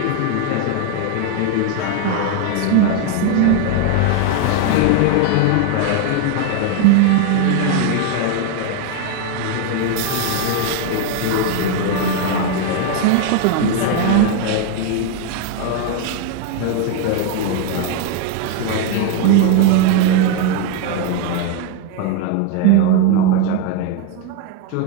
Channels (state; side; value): different; both; correlation 0.01